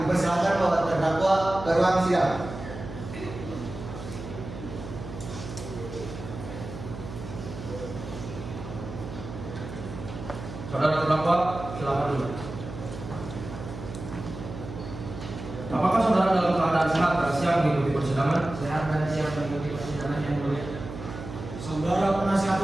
dipersilakan bawa terdakwa ke ruang sidang. Saudara terdakwa, silakan dulu. Apakah saudara dalam keadaan sehat dan siap mengikuti persidangan? Sehat dan siap mengikuti persidangan. pidana yang mulia. Saudara penasihat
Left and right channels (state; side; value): noise; right; hum, 10 dB below the sound